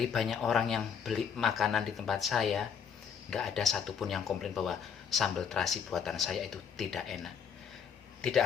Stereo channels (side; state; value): right; quieter; 7.2 dB